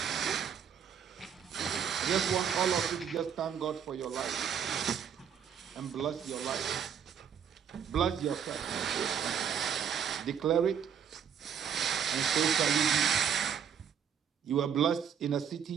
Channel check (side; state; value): left; quieter; 8.1 dB